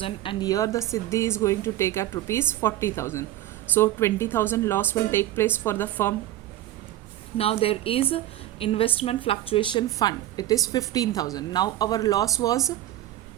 and here the Siddhi is going to take at rupees 40,000. So 20,000 loss will take place for the firm. Now there is investment fluctuation fund. It is 15,000. Now our loss was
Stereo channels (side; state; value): left; quieter; 14.3 dB